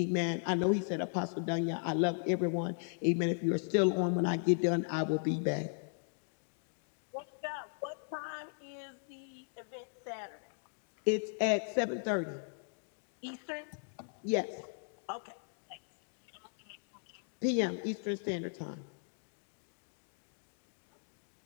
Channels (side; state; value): right; silent; digital silence